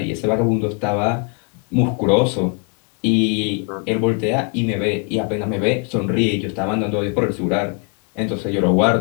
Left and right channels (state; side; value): quieter; right; 35.1 dB